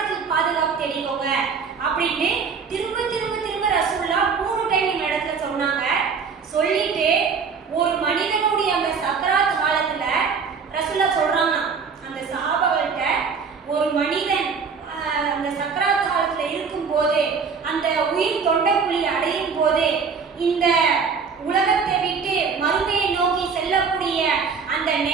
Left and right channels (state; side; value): quieter; left; 5.7 dB